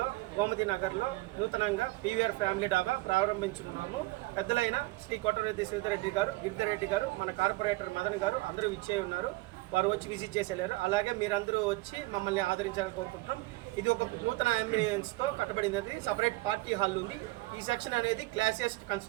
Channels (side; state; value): left; quieter; 21.5 dB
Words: గోమతి నగర్లో నూతనంగా పీవీఆర్ ఫ్యామిలీ డాబా ప్రారంభించుకున్నాము. పెద్దలైన శ్రీ కోటరెడ్డి శ్రీధరెడ్డి గారు, గిరిధరెడ్డి గారు, మన కార్పొరేటర్ మదన్ గారు అందరూ ఇచ్చే ఉన్నారు. వారు వచ్చి విజిట్ చేసి వెళ్ళారు. అలాగే మీరందరూ వచ్చి మమ్మల్ని ఆదరించాలని కోరుకుంటున్నాం. ఇది ఒక నూతన అంబియన్స్తో కట్టబడినది. సపరేట్ పార్టీ హాల్ ఉంది. ఈ సెక్షన్ అనేది classiest